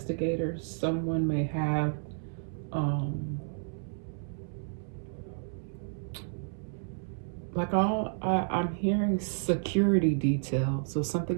someone may have I'm hearing security detail. So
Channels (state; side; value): silent; left; 57 dB below the other